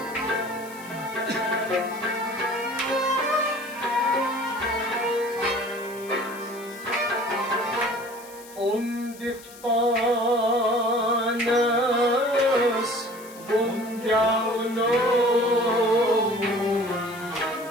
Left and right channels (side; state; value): left; noise; hiss, 19 dB below the sound